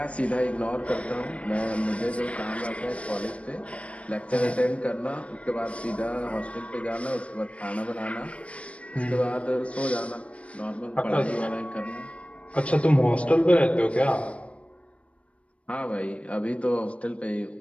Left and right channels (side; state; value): right; late; 0.062 ms